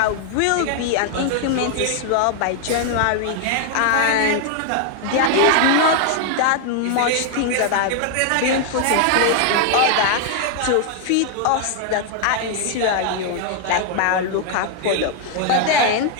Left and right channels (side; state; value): both; different; correlation 0.00